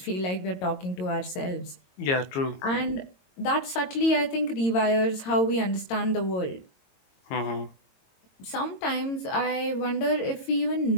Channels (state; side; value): late; right; 22 ms